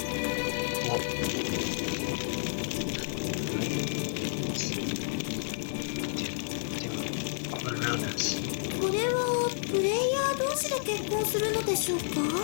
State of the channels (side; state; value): right; silent; digital silence